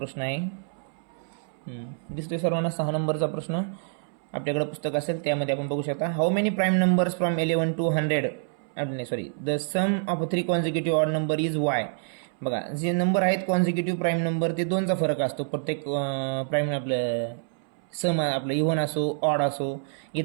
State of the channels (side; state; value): left; silent; 60 dB below the other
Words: आहे दिसतोय सर्वांना. 6 नंबरचा प्रश्न आपल्याकडे पुस्तक असेल त्यामध्ये आपण बघू शकता. How many prime numbers from 11 to 100 the sum of 3 consecutive odd number is Y. बघा जे नंबर आहेत कॉन्झिक्युटिव्ह प्राईम नंबर ते 2चा फरक असतो प्रत्येक प्राईम. आपलं सम आपलं इव्हन असो ऑड असो.